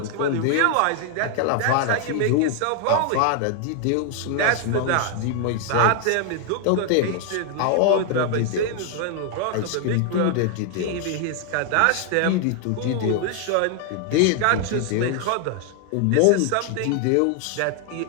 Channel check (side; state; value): both; different; correlation 0.00